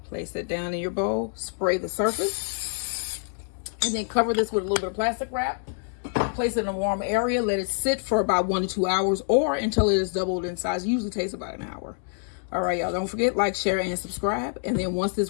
Place it down in your bowl, spray the surface, and then cover this with a little bit of plastic wrap. Place it in a warm area. Let it sit for about 1 to 2 hours, or until it is doubled in size. It usually takes about an hour. All right, y'all, don't forget, like, share, and subscribe. And then once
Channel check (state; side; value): silent; right; 61 dB below the other